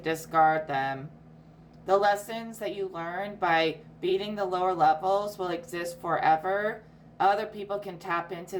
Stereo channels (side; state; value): both; identical; correlation 1.00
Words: them. The lessons that you learn by beating the lower levels will exist forever. Other people can tap